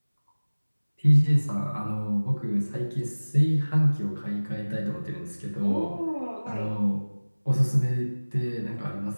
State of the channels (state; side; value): inverted; both; correlation -1.00